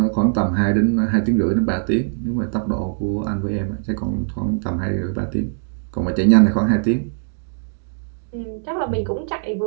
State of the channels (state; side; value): silent; left; digital silence